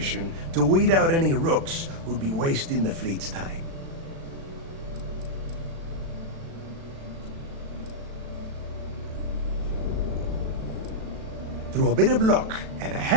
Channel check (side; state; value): left; late; 36 ms